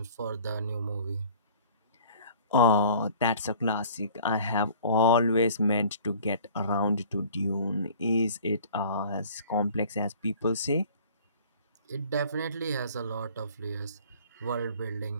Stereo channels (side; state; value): both; inverted; correlation -0.49